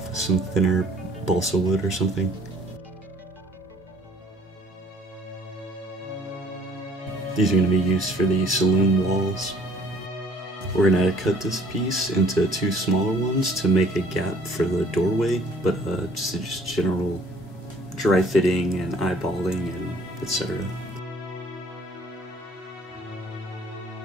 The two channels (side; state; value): both; normal; correlation 0.56